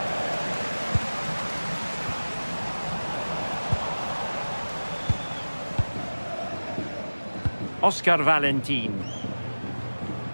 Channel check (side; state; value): both; inverted; correlation -1.00